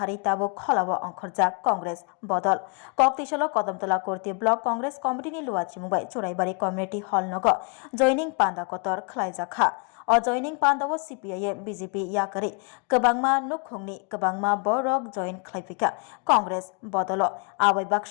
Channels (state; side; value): quieter; right; 36.9 dB